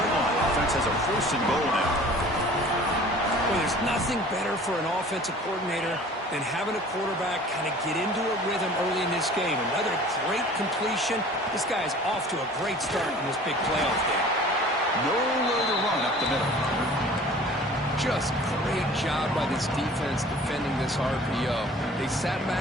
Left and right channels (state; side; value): normal; both; correlation 0.47